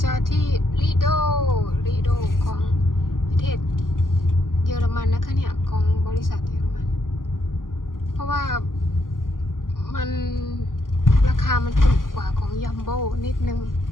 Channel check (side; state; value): right; late; 0.90 ms